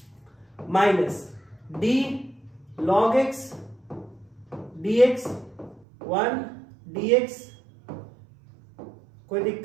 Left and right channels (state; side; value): drops out; left; at 5.9 s